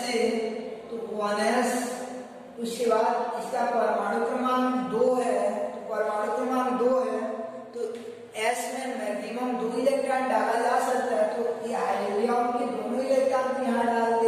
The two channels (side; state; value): both; identical; correlation 1.00